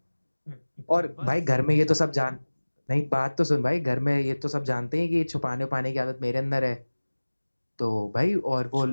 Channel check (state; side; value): inverted; both; correlation -1.00